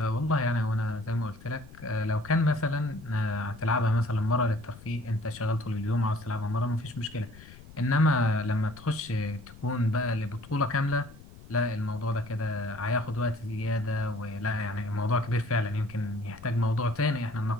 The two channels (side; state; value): left; noise; rumble, 19 dB below the sound